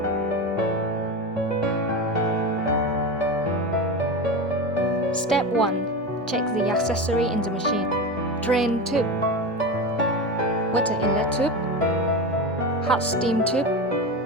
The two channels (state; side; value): normal; both; correlation 0.22